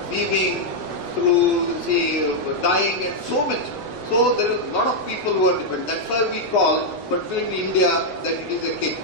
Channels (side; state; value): right; late; 8.1 ms